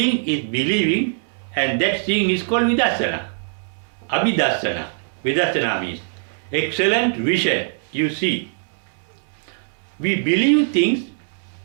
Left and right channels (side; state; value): left; silent; 64 dB below the other